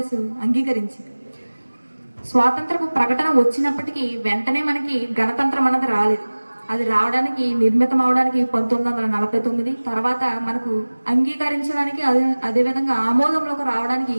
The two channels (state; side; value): inverted; both; correlation -1.00